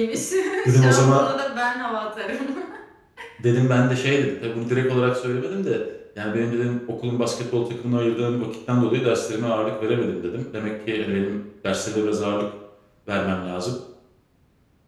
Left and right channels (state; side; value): identical; both; correlation 1.00